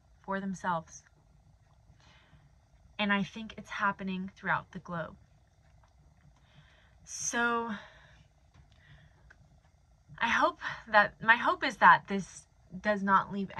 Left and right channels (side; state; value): both; identical; correlation 1.00